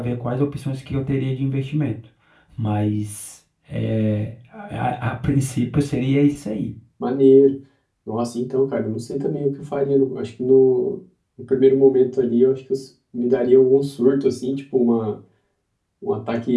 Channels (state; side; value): identical; both; correlation 1.00